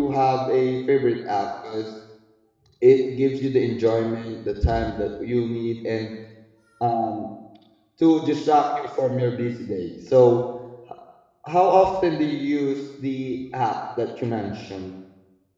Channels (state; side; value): identical; both; correlation 1.00